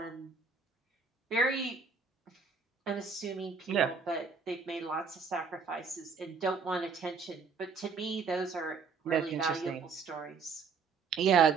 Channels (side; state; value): left; quieter; 5.3 dB